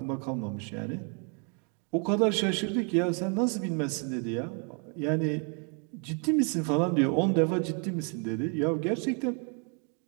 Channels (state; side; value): quieter; left; 38.6 dB